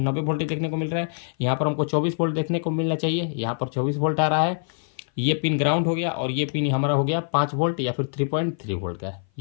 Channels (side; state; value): right; silent; 56 dB below the other